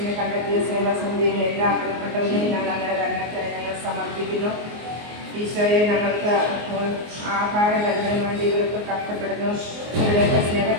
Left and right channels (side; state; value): left; late; 24 ms